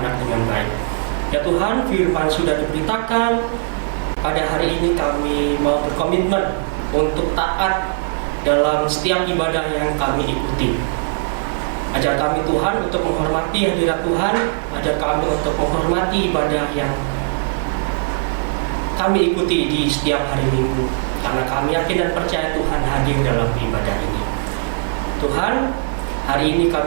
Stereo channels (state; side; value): silent; left; digital silence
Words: dengan baik. Ya Tuhan, firman sudah diberitakan. Pada hari ini kami mau berkomitmen untuk taat dalam setiap ibadah yang kami ikuti. Ajar kami Tuhan untuk menghormati hadirat Tuhan, ajar kami untuk menghormati ibadah yang kami ikuti di setiap hari Minggu, karena kami yakin dan percaya Tuhan hadir dalam ibadah ini. Tuhan, hari ini